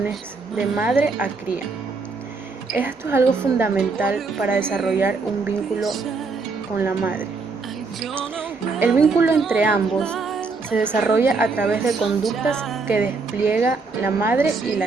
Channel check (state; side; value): quieter; left; 4.2 dB